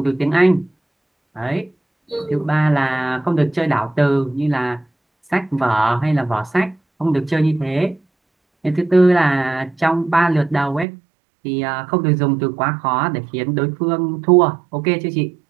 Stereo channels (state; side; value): drops out; left; at 10.9 s